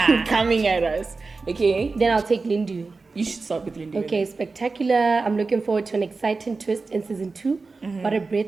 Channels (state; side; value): quieter; left; 4.0 dB